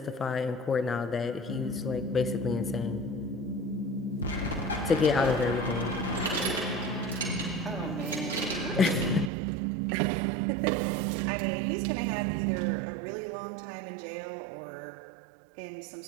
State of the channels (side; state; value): left; drops out; at 9.3 s